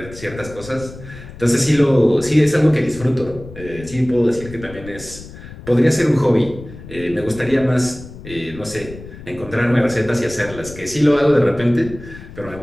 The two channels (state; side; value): noise; left; rumble, 15 dB below the sound